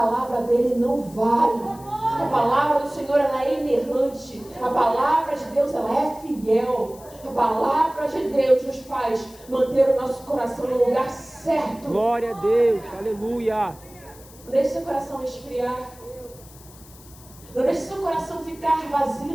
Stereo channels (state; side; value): noise; left; hiss, 22 dB below the sound